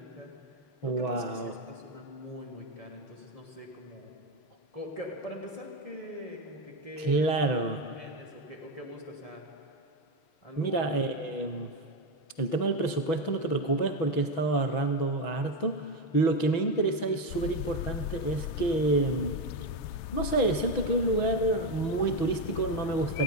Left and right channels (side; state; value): right; late; 6.1 ms